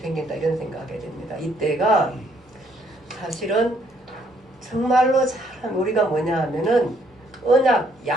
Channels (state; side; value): normal; both; correlation 0.68